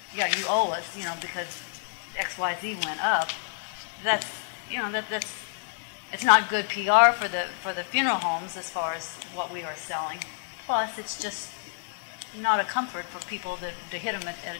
Yeah, you owe us, because XYZ went up. That's, it's not good PR for the funeral homes as far as what we are selling. Plus, it's just not a comfort for people to hit them at a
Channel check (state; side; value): silent; right; 58 dB below the other